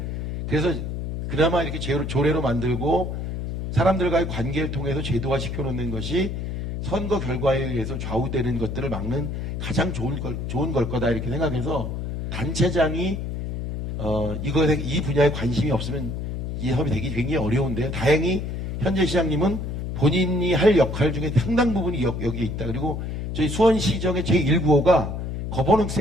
그래서 그나마 이렇게 조례로 만들고 사람들과의 관계를 통해서 제도화 시켜놓는 것이 선거 결과에 의해서 좌우되는 것들을 막는 가장 좋은 걸 거다 이렇게 생각해서 단체장이 이 분야에 관심이 없으면 이 사업이 되기 굉장히 어려운데요. 다행히 현재 시장님은 본인이 할 역할 중에 상당 부분이 여기에 있다. 그리고 저희 수원시정의 제1구호가 거버넌스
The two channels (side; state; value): left; noise; hum, 4 dB below the sound